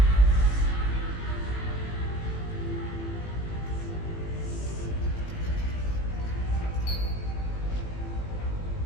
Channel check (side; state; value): right; late; 18 ms